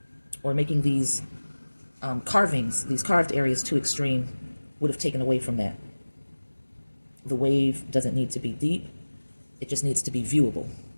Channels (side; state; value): both; inverted; correlation -1.00